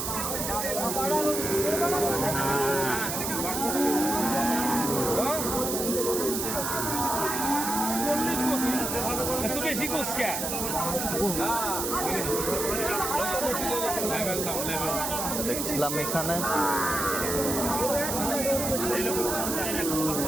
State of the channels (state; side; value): noise; right; hiss, 2 dB below the sound